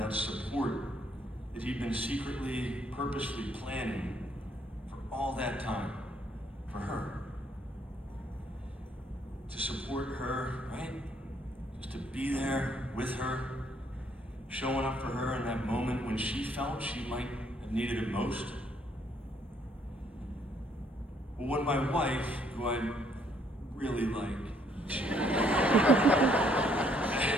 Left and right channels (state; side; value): normal; both; correlation 0.67